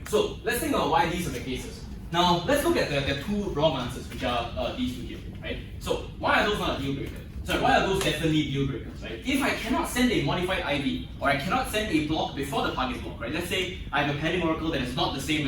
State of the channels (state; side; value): identical; both; correlation 1.00